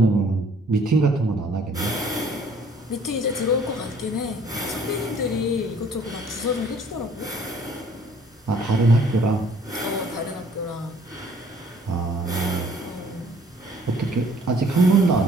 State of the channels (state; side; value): normal; both; correlation 0.58